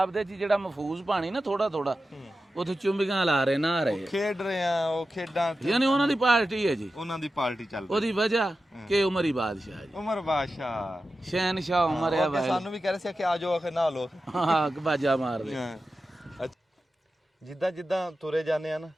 ਦੇ ਜੀ ਜਿਹੜਾ ਮਹਫੂਜ਼ ਪਾਣੀ ਨਾ ਥੋੜਾ ਥੋੜਾ, ਉੱਥੇ ਚੁੰਬੀਆਂ ਲਾ ਰਹੇ, ਨਹਾ ਰਹੇ, ਖੇਡ ਰਹੇ ਆ ਉਹ ਖੇਡਾਂ। ਯਾਨੀ ਉਹਨਾਂ ਦੀ ਪਾਰਟੀ ਹੈ ਜੀ, ਉਹਨਾਂ ਦੀ ਪਾਰਟੀ ਚੱਲ ਉਹਦੀ ਵਜ੍ਹਾ ਕਿ ਉਮਰ ਹੀ ਬਾਦਸ਼ਾਹ ਜੀ, ਉਮਰ ਬਾਦਸ਼ਾਹ, ਸ਼ਹਿਨਸ਼ਾਹ ਉਮਰ ਆ ਭਾਈ। ਸਾਨੂੰ ਵੀ ਕਹਿ ਰਹੇ ਸੀ ਕਿ ਆ ਜਾਓ, ਆਖੇ ਨਹਾ ਲਓ। ਹਾਂ ਬਾਜਾ ਮਾਰਦੇ। ਜਿੱਦਾਂ ਜਿੱਦਾਂ ਤੁਰੇ ਜਾਂਦੇ ਆ ਨਾ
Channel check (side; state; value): both; normal; correlation 0.92